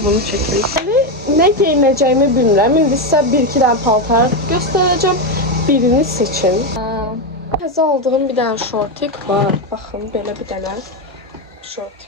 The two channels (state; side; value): normal; both; correlation 0.09